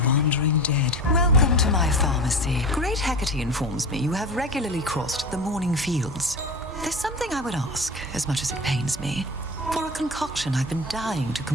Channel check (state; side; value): normal; both; correlation 0.30